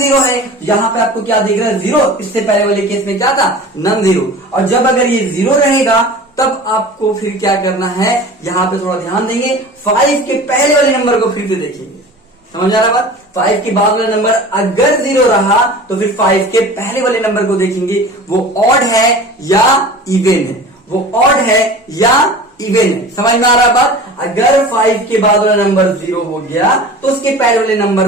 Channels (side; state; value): both; normal; correlation 0.38